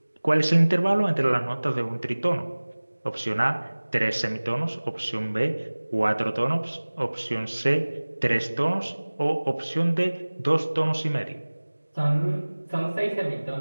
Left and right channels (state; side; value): inverted; both; correlation -1.00